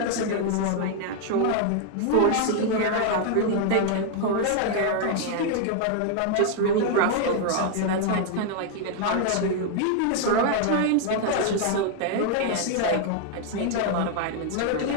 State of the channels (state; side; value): different; both; correlation 0.00